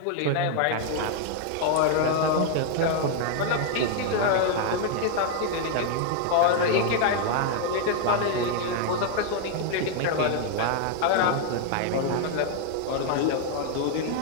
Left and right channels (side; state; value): both; different; correlation 0.00